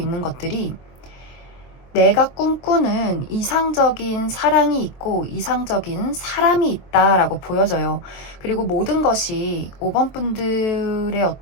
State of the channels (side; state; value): right; late; 23 ms